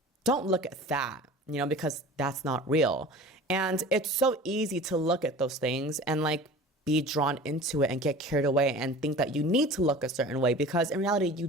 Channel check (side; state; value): both; normal; correlation 0.40